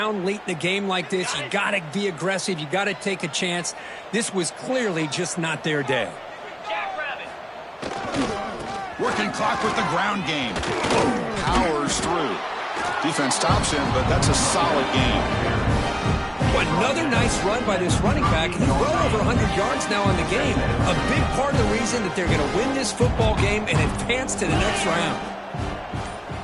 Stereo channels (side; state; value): both; identical; correlation 1.00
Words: late in a game like this, you got to be aggressive. You got to take a chance. This was clearly just not their day. Working clock with the ground game. Powers through. Defense stops him, but that's a solid game. Another nice run by this running back. He's well over 100 yards now in the game. A big part of the reason that they're going to win this football game and advance to the next round.